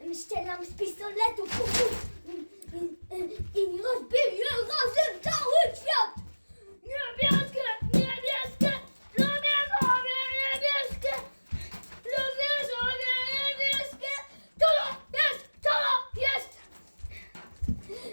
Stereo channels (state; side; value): inverted; both; correlation -1.00